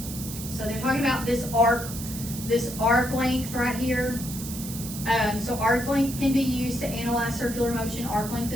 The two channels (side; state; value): right; noise; hiss, 10 dB below the sound